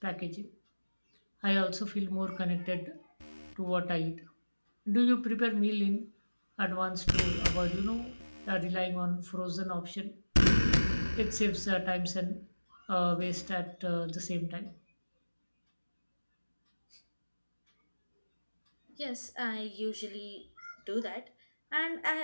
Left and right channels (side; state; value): both; inverted; correlation -1.00